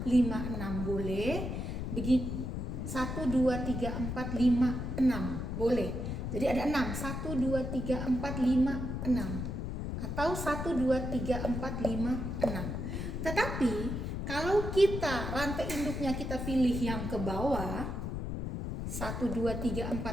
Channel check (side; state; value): left; noise; rumble, 3 dB below the sound